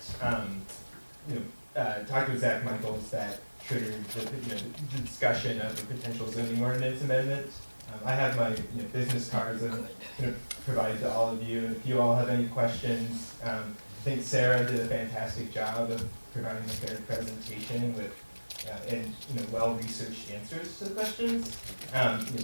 talked with Zach Michaels that triggered the discussion of a potential zoning ordinance amendment. I have my business cards that I'm going to provide to all of you, and if you all have any questions, I think Sarah did a fantastic job of providing a fair presentation with and well-researched answers to the questions.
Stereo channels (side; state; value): both; inverted; correlation -1.00